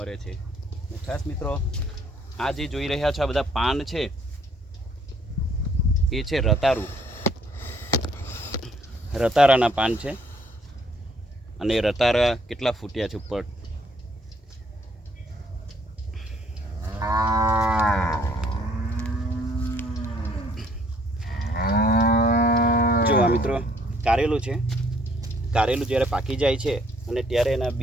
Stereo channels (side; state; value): both; normal; correlation 0.65